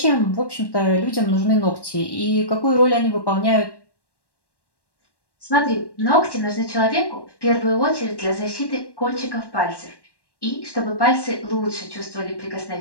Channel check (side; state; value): right; late; 1.1 ms